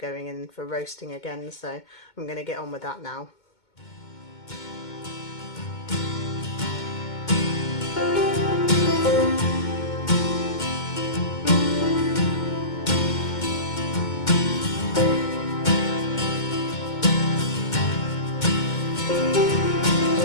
in for roasting again, so I'm going to get on with that now.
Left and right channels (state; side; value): late; right; 2.2 ms